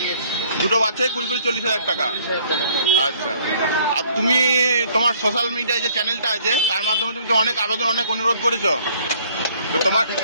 দুটো বাচ্চাই 20-40,000 টাকা। 40,000 টাকা। আচ্ছা, আর তুমি তোমার সোশ্যাল মিডিয়ায় যে চ্যানেলটা আছে তার মাধ্যমে তুমি তো অনেক আবেদন, অনেক অনুরোধ করেছো, তো তোমার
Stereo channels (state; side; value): inverted; both; correlation -0.59